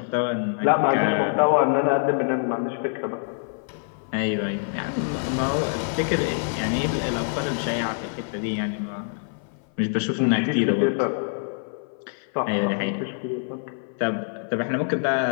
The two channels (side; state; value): right; silent; 56 dB below the other